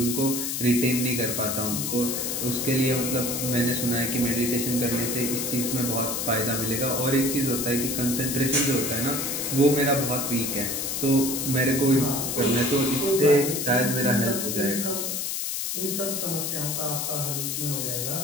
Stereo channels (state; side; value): noise; left; hiss, 2 dB below the sound